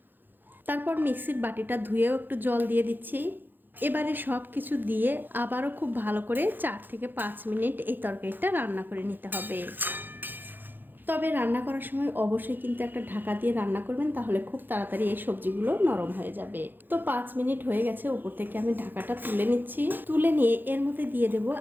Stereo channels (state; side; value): late; left; 0.092 ms